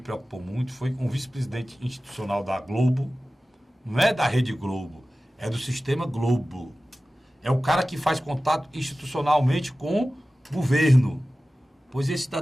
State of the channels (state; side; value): normal; both; correlation 0.96